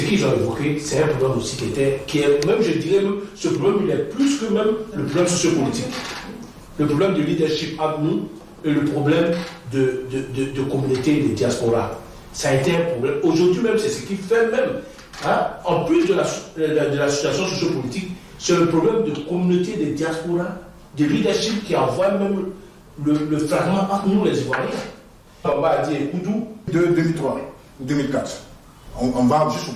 qu'ils ont évoqué, c'est un problème aussi qui est même, je dirais, même, ce problème, il est plus que même le problème sociopolitique. Le problème de leadership entre nous et le problème de communauté, de diaspora. Ça a été un problème. Aujourd'hui même, c'est ce qui fait même, en plus de la situation sociopolitique, c'est le problème de communauté, de diaspora, de leadership qui envoie même le fragment entre nous les Ivoiriens. On va dire Koudou. De 2003 ou 2004, on va juste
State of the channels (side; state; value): both; identical; correlation 1.00